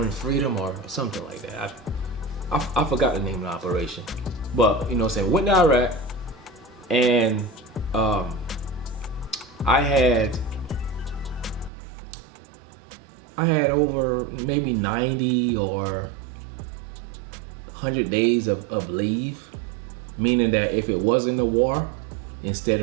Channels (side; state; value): left; drops out; at 11.7 s